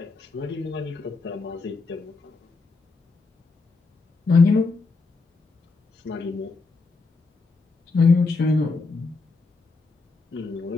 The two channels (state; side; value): quieter; right; 3.9 dB